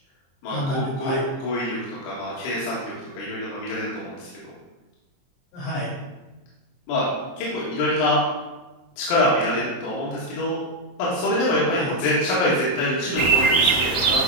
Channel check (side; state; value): right; late; 22 ms